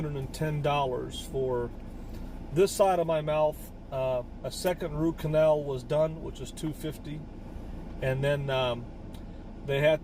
for this side of my mouth. A second root canal was done, which is $250, and then they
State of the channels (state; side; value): identical; both; correlation 1.00